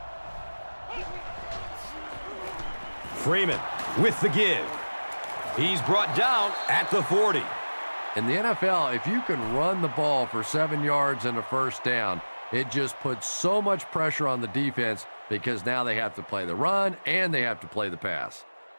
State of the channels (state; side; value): inverted; both; correlation -1.00